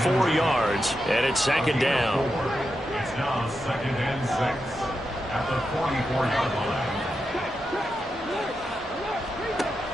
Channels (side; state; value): both; normal; correlation 0.87